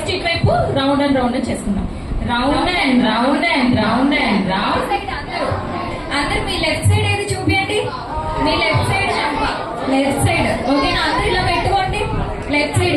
రౌండ్ అండ్ రౌండ్ చేసుకుందాం. Round and round and round and round. అందరు మీ లెఫ్ట్ సైడ్ ఏది చూపించండి. మీ లెఫ్ట్ సైడ్ లెఫ్ట్ సైడ్. ఓకేనా? అందరు ఇలా పెట్టుకోండి లెఫ్ట్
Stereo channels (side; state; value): both; identical; correlation 1.00